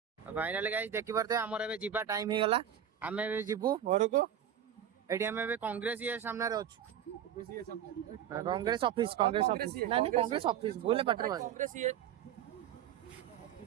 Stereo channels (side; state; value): left; quieter; 9.6 dB